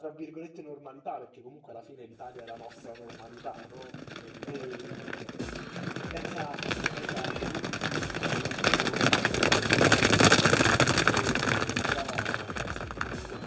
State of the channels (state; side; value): identical; both; correlation 1.00